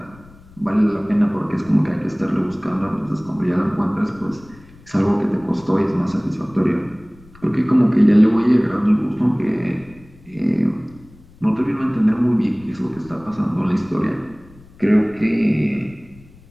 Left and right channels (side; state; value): left; noise; rumble, 24 dB below the sound